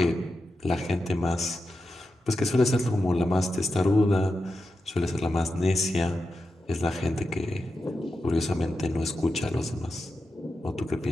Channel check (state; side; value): normal; both; correlation 0.89